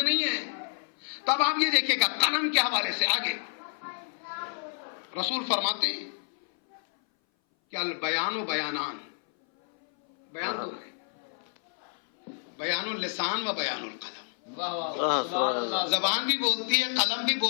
نہیں ہیں. تب آپ یہ دیکھیں گا قلم کے حوالے سے آگے رسول فرماتے ہیں کہ البیان و بیانان، بیان دو ہے، بیان اللسان و بیان القلم. زبان بھی بولتی ہے، قلم بھی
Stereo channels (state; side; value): silent; right; 58 dB below the other